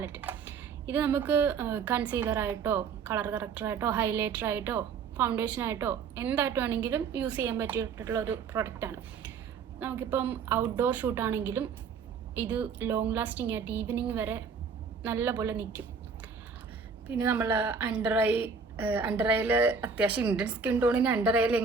ഇത് നമുക്ക് കൺസീലറായിട്ടോ കളർ കറക്ടറായിട്ടോ ഹൈലൈറ്ററായിട്ടോ ഫൗണ്ടേഷനായിട്ടോ എന്തായിട്ട് വേണമെങ്കിലും യൂസ് ചെയ്യാൻ പറ്റിയിട്ടുള്ള ഒരു പ്രൊഡക്റ്റാണ്. നമുക്കിപ്പം ഔട്ട്ഡോർ ഷൂട്ടാണെങ്കിലും ഇത് ലോങ് ലാസ്റ്റിംഗ് ആയിട്ട് ഈവനിങ് വരെ നല്ല പോലെ നിൽക്കും. പിന്നെ നമ്മൾ അണ്ടർ ഐയിൽ അത്യാവശ്യം ഇന്ത്യൻ സ്കിൻ ടോണിന് അണ്ടർ ഐയിൽ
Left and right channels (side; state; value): left; quieter; 5.6 dB